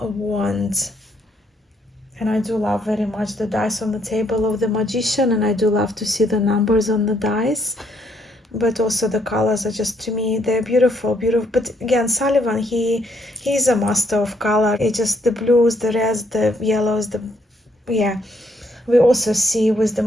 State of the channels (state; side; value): normal; both; correlation 0.71